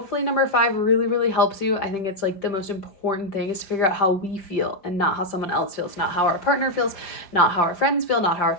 number 5 really, really helps you. I think it's like the most important thing is to figure out how we feel and not how someone else feels, not how our partner feels, not how our friends feel, not how our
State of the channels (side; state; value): right; late; 5.0 ms